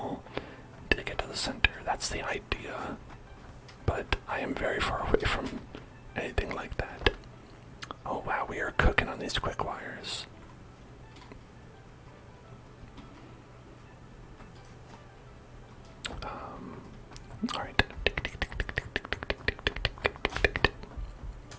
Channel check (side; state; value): both; identical; correlation 1.00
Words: to get to the center. That's the idea, but I am very far away from anything like that. Oh wow, we are cooking on these quick wires. Alright.